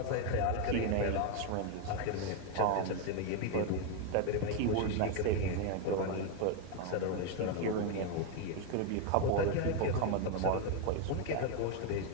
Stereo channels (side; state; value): both; different; correlation 0.01